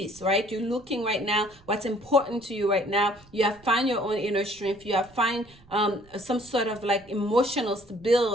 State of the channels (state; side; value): noise; right; rumble, 26 dB below the sound